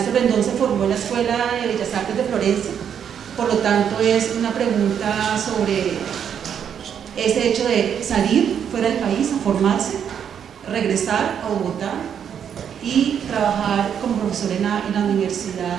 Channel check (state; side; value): quieter; left; 8.3 dB